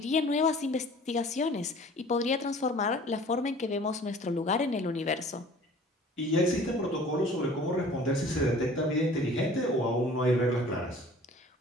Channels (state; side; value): normal; both; correlation 0.48